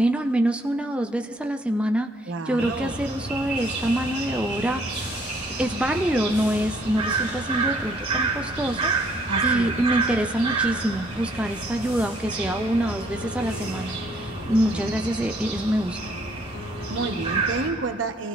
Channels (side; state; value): both; normal; correlation 0.65